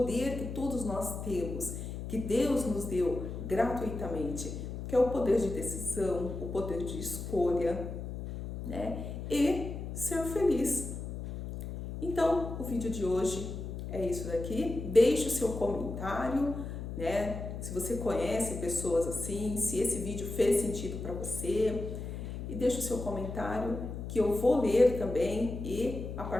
que todos nós temos, que Deus nos deu gratuitamente, que é o poder de decisão, o poder de escolha, né, e ser feliz. Então, o vídeo de hoje é isso daqui. Deixe o seu comentário, né? Se você conhece pessoas assim, se esse vídeo fez sentido para você. E deixe o seu comentário que eu vou ler também e a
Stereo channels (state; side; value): noise; left; hum, 7 dB below the sound